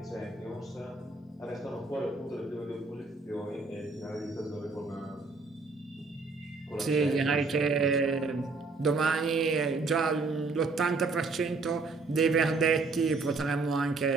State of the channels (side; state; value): left; quieter; 3.9 dB